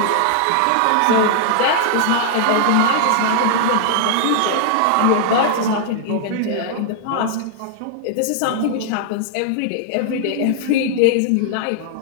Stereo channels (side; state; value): both; different; correlation -0.01